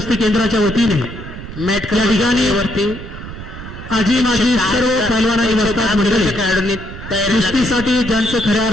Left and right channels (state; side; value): noise; right; rumble, 12 dB below the sound